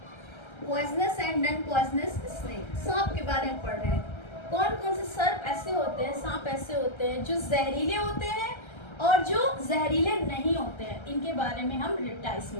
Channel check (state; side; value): late; right; 1.3 ms